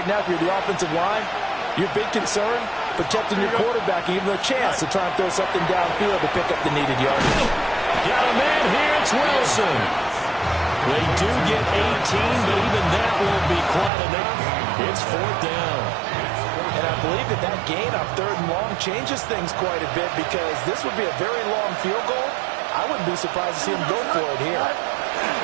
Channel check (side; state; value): left; drops out; at 13.9 s